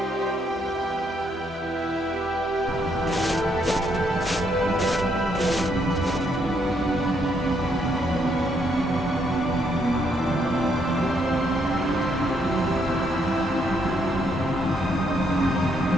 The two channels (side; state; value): both; normal; correlation 0.74